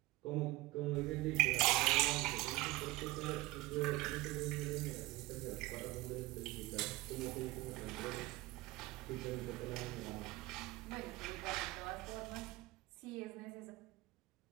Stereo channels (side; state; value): left; quieter; 19.7 dB